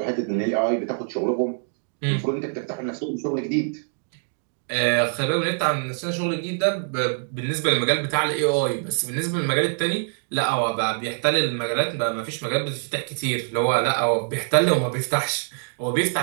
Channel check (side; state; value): left; silent; digital silence